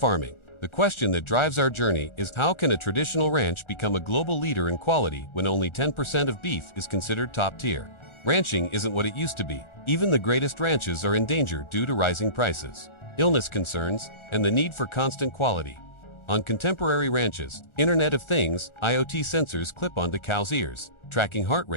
The question that drives our journey is, how can a traditional ranch become a global leader in quality when only 10% of beef is considered top tier? Ranching isn't what it used to be. Even the greatest ranches are in danger due to rising prices, illness concerns, and the need for constant quality. On contemporary ranches, Internet of Things, IoT sensors clip onto cows' ears, tracking heart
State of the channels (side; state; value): right; late; 1.4 ms